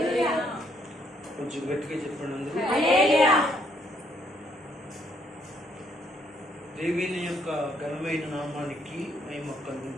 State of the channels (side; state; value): both; normal; correlation 0.70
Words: కొంచెం గట్టిగా చెప్పండి అందరూ. దేవుని యొక్క ఘనమైన నామానికి మహిమ కలుగును